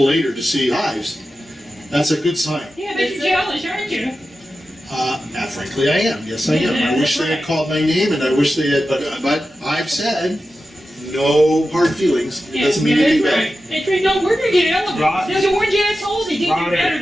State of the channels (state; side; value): normal; both; correlation 0.92